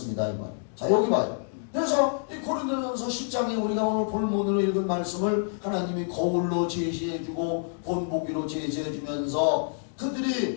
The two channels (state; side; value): silent; right; digital silence